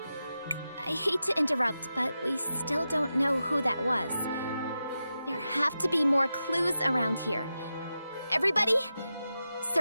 I hate to interrupt, but we still don't know who that was. There have to be more clues around here. Everybody,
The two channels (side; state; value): both; inverted; correlation -0.90